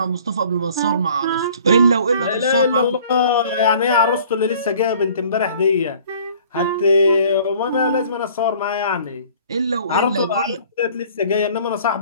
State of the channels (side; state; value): both; inverted; correlation -0.52